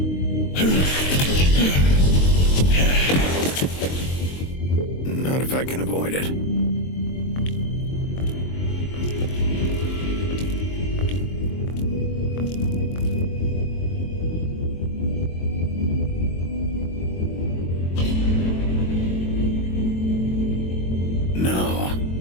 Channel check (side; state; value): right; late; 22 ms